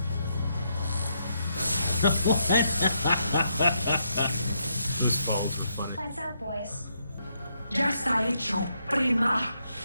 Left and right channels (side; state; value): both; inverted; correlation -0.78